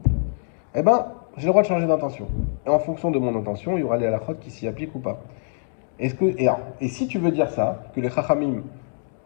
Eh ben, j'ai le droit de changer d'intention. Et en fonction de mon intention, il y aura les halakhot qui s'y appliquent ou pas. Et si tu veux dire ça, que les Chachamim,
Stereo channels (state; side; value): silent; right; digital silence